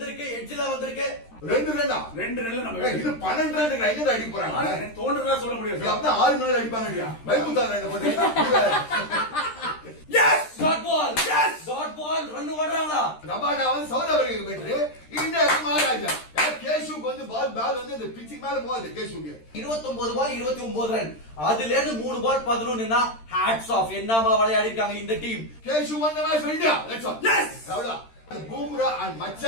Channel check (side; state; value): right; late; 13 ms